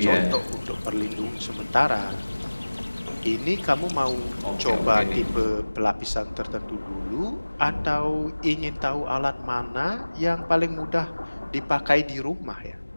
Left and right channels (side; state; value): both; inverted; correlation -1.00